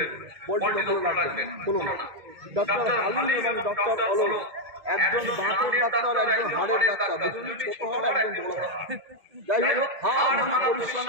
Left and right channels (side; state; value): left; late; 2.2 ms